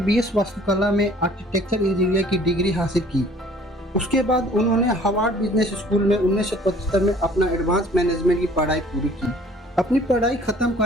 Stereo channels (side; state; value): both; normal; correlation 0.53